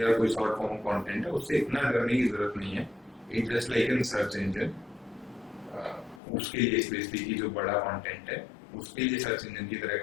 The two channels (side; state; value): right; drops out; at 6.2 s